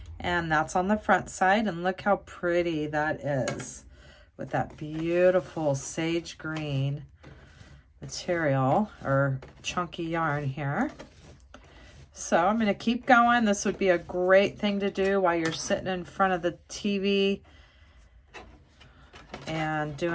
and that's on the front side. And look how pretty that is with that beautiful sage green material or chunky yarn here. So I'm going to keep going. This would be a great thing to do while you're sitting in front of the TV and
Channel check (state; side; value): identical; both; correlation 1.00